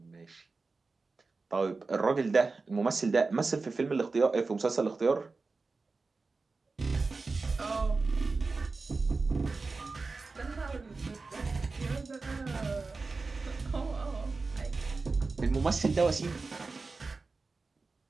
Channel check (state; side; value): quieter; left; 4.0 dB